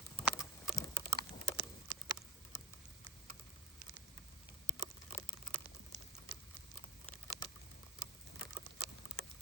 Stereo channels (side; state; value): both; normal; correlation 0.41